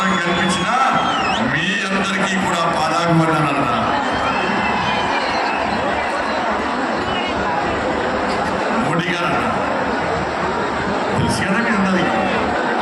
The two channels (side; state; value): both; identical; correlation 1.00